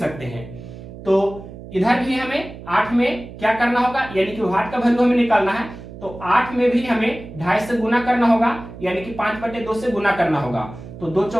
हैं। तो इधर भी हमें 8 में क्या करना होगा, यानी कि 8 का वैल्यू हमें निकालना है, तो 8 में भी हमें 2.5 से गुना करना होगा, यानी कि 5/2 से गुना करना होगा। तो 2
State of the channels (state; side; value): noise; right; hum, 14 dB below the sound